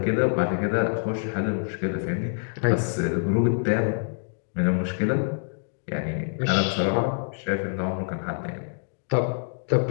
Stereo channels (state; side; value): silent; right; digital silence